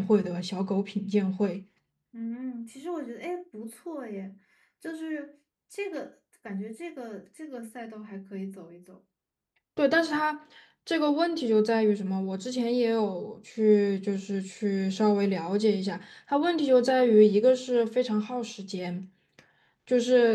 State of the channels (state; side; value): identical; both; correlation 1.00